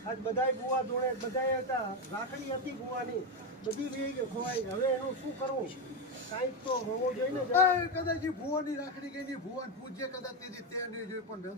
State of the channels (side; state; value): both; normal; correlation 0.10